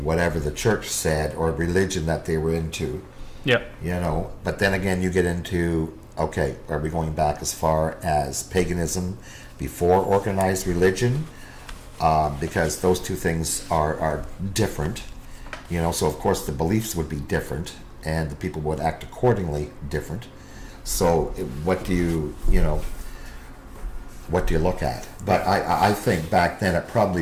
the church said or religion that they were into. Yeah. But then again, you get into, okay, are we going back as far as paganism before organized religion? Because those two things are different. So of course the beliefs would be different, and the people would act accordingly different. So what do you look at? But I think back then it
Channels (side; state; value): both; identical; correlation 1.00